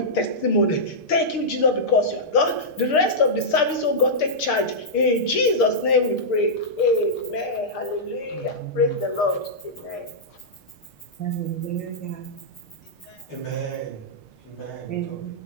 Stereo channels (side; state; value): right; late; 6.6 ms